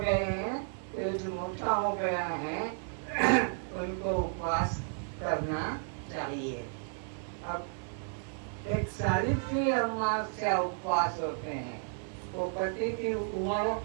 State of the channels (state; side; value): silent; left; 56 dB below the other